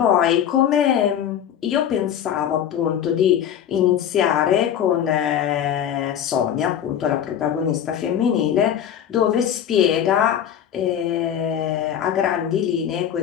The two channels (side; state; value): right; quieter; 9.6 dB